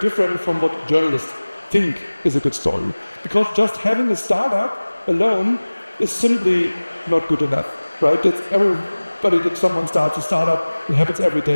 from what journalists think is a good story. Because just having a startup alone is simply not good enough, right? That's everybody that someone starts a startup, it happens every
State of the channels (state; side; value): inverted; both; correlation -1.00